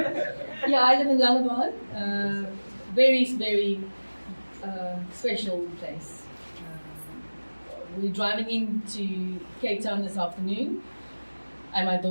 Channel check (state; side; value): inverted; both; correlation -1.00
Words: Yeah, I live in Langebaan. Very, very special place. We're driving into Cape Town this afternoon, and my